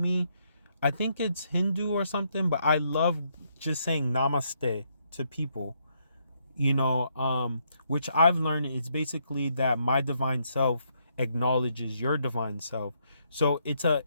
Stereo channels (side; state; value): both; inverted; correlation -0.75